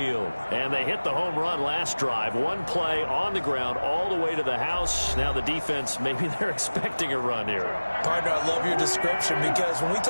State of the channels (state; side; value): inverted; both; correlation -1.00